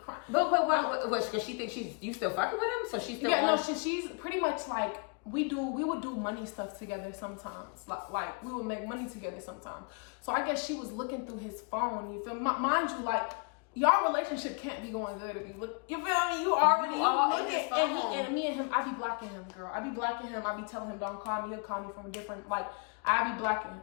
But what, because she thinks you still fucking with him? So she's still on? No, she's pretty much like, we would do money stuff together sometimes. Like, we would make money together sometimes. So I guess she was looking through his phone, you feel me? Mind you, like, y'all relationship can't be going good if you look. You feel me? You already look at and me and him. I be blocking him, girl. I be blocking him. I be telling him don't call me. He'll call me from a different. Like I be blocking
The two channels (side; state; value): right; quieter; 36.0 dB